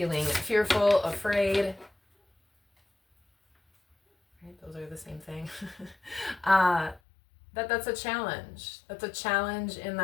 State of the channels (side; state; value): right; drops out; at 7.0 s